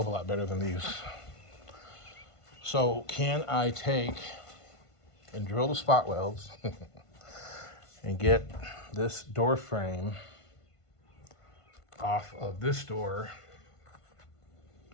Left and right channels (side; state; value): right; late; 1.5 ms